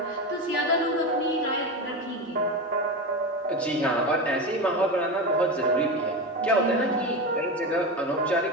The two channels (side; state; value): both; normal; correlation 0.20